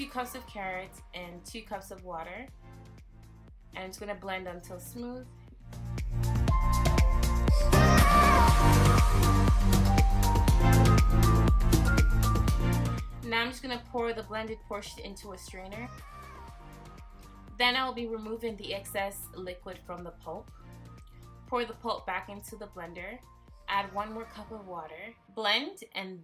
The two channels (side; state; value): both; identical; correlation 1.00